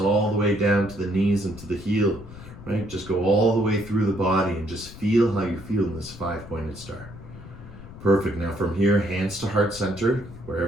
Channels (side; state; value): left; noise; rumble, 16 dB below the sound